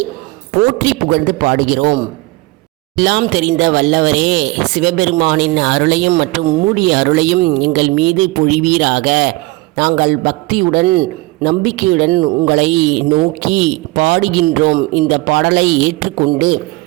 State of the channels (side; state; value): left; quieter; 21.7 dB